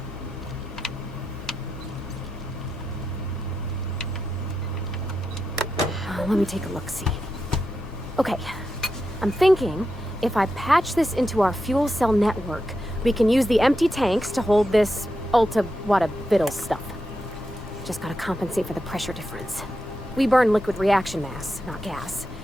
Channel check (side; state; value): both; normal; correlation 0.87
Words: Let me take a look-see. Okay, I'm thinking if I patch this into our fuel cell network, we can use the empty tanks to hold this ulta-wada-biddle stuff. Just gotta compensate for the pressure difference. We burn liquid reaction mass, not gas,